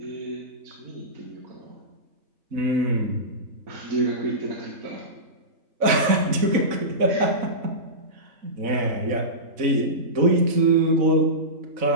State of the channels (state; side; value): late; left; 4.0 ms